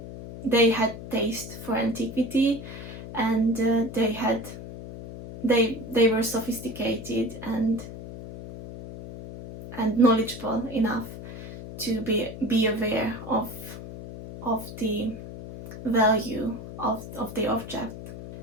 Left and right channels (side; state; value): left; noise; hum, 11 dB below the sound